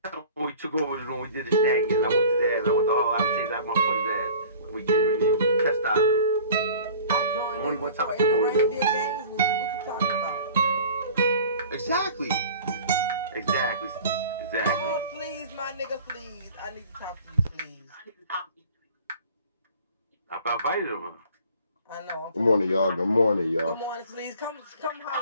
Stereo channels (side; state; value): both; inverted; correlation -0.45